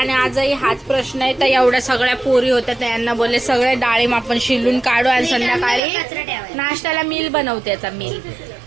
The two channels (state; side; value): drops out; left; at 5.8 s